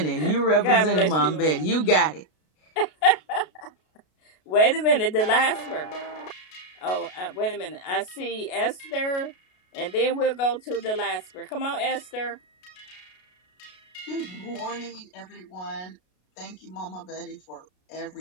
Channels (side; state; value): right; late; 33 ms